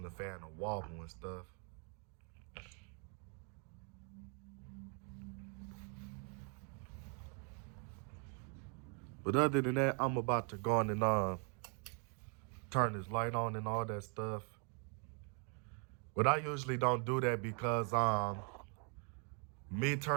the fan to wobble and stuff. But other than that, I'm about to go on and turn this light on and all that stuff. But I usually don't do that because me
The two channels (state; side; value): quieter; left; 38.2 dB